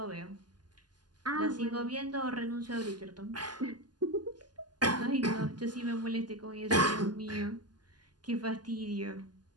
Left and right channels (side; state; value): left; late; 0.70 ms